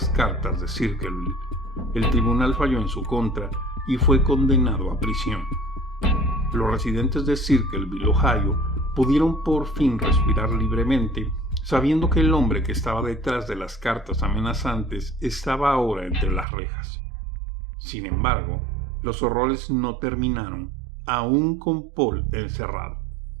cartas de Circleville, el tribunal falló en su contra y fue condenado a prisión. Los residentes de Circleville, Ohio, pudieron por fin respirar libremente, sabiendo que el hombre que estaba detrás de las cartas amenazantes estaba ahora entre las rejas. Sin embargo, los horrores no terminaron, aún con Paul encerrado,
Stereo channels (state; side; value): drops out; left; at 16.4 s